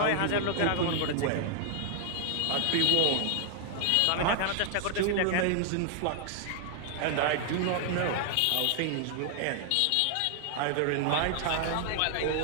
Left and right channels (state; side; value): different; both; correlation 0.00